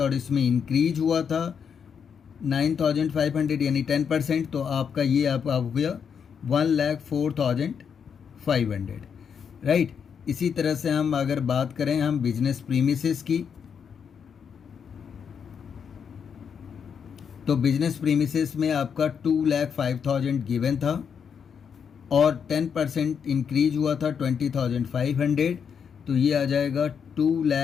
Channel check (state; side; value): quieter; right; 7.1 dB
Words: इसमें इंक्रीज हुआ था 9,500 यानी 10%। तो आपका ये आप हो गया 1,04,500, राइट। इसी तरह से हम अगर बात करें हम बिजनेस प्रीमिसेस की, तो बिजनेस प्रीमिसेस में आपका 2,05,000 गिवन था और 10% इंक्रीज हुआ था 20,500। तो ये आ जाएगा